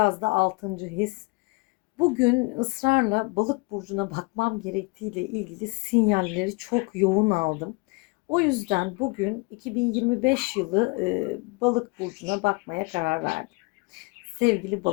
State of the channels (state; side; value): quieter; right; 28.1 dB